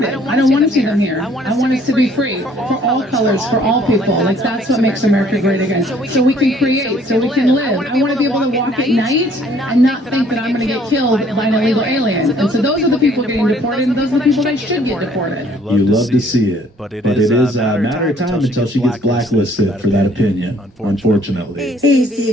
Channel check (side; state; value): both; normal; correlation 0.60